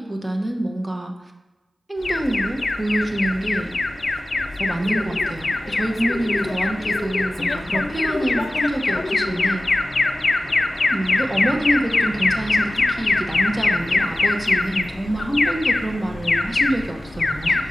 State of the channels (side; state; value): both; normal; correlation 0.96